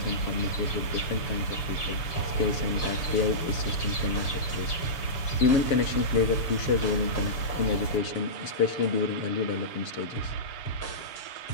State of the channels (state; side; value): late; right; 7.0 ms